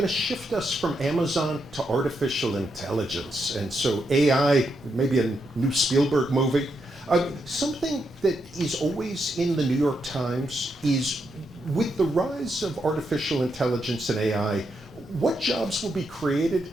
to shift us from Amazon to artificial intelligence. And so AI, maybe a new Spielberg movie. Something that is always in the New York Times is, with the rise of artificial intelligence and AI, what jobs will be created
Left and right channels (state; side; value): normal; both; correlation 0.82